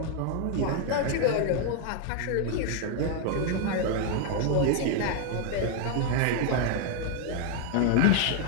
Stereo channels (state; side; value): different; both; correlation 0.00